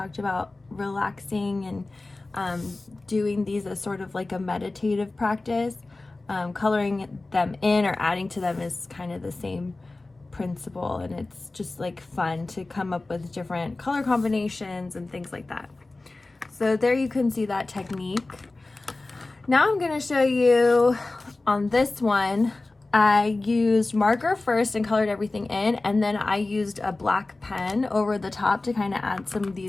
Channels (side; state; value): right; quieter; 3.2 dB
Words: about relaxing and doing these as sort of like a meditative practice. Coloring them in or adding to them is kind of the same principle, and it's just like fun to come up with different color combinations and things like that. So there you can see that technique. Now I'm going to show you on this one, I used marker first and colored everything in, and then I used a black pen over the top to kind of add some of